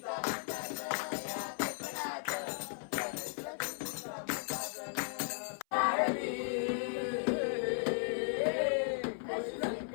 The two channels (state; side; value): silent; right; 54 dB below the other